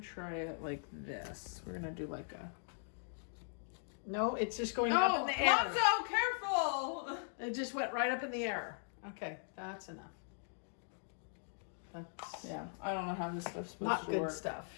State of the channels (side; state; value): right; silent; digital silence